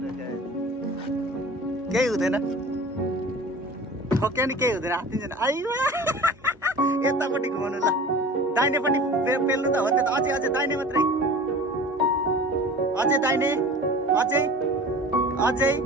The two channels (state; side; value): normal; both; correlation 0.40